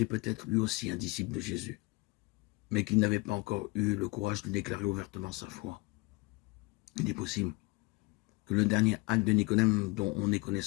peut-être lui aussi un disciple de Jésus, mais qu'il n'avait pas encore eu le courage de déclarer ouvertement sa foi. Il est possible que le dernier acte de Nicodème dont on ait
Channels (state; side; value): quieter; right; 24.9 dB